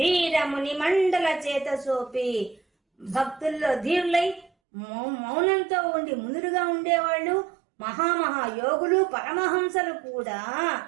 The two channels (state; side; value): drops out; left; at 4.5 s